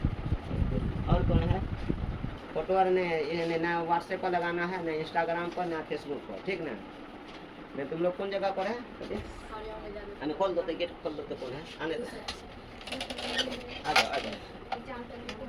और कौन है? फोटो और ने ना व्हाट्सएप पर लगाना है, ना इंस्टाग्राम पर, ना फेसबुक पर, ठीक ना। मैं तुम लोग कौन जगह पर है? अने खोल दो तो गेट खोल दो तो कौन है? आने दो, आ जाओ आ जाओ।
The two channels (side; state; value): both; identical; correlation 1.00